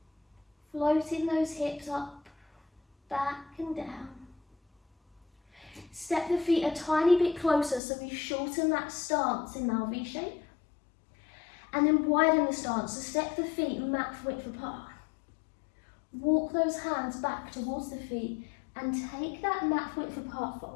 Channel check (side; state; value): right; drops out; at 7.8 s